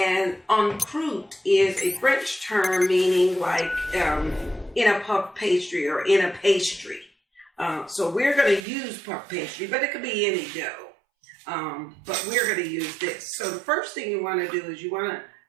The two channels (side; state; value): left; drops out; at 8.6 s